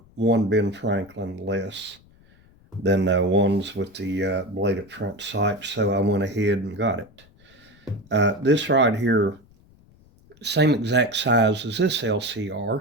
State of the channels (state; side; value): noise; left; rumble, 28 dB below the sound